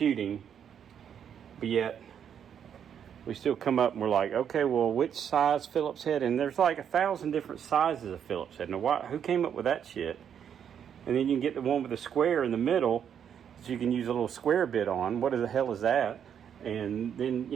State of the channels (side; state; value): left; quieter; 8.5 dB